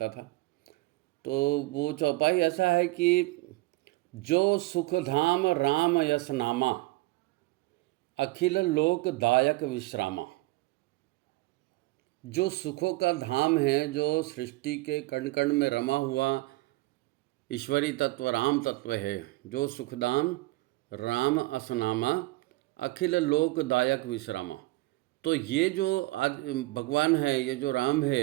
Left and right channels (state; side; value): quieter; left; 21.3 dB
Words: था। तो वो चौपाई ऐसा है कि जो सुखधाम राम यस नामा, अखिल लोक दायक विश्रामा। जो सुखों का धाम है, जो सृष्टि के कण कण में रमा हुआ ईश्वरी तत्व राम तत्व है, जो सुखदाम राम असनामा, अखिल लोक दायक विश्रामा। तो ये जो आज भगवान है, ये जो राम